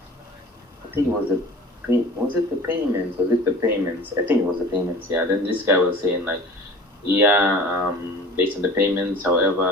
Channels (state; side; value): normal; both; correlation 0.42